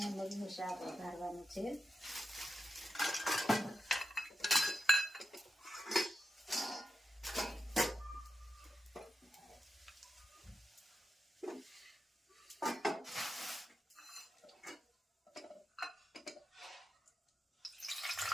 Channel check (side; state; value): both; normal; correlation 0.88